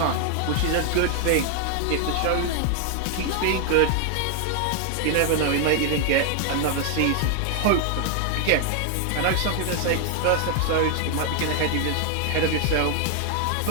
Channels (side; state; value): both; different; correlation 0.00